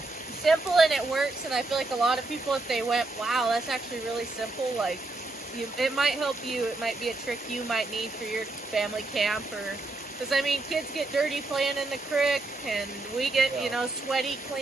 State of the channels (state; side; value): quieter; left; 3.1 dB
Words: simple, and it works. And I feel like a lot of people, if they went, wow, that's actually really simple, like, it might help you. It might be a trick you might need for your family camp, or because I mean, kids get dirty playing in the creek, and we get you know, sweaty